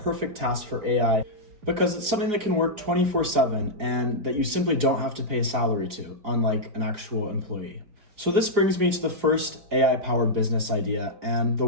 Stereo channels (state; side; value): late; left; 4.9 ms